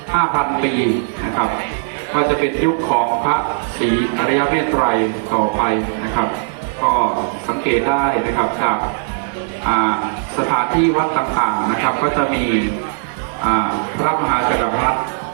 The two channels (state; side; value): silent; left; digital silence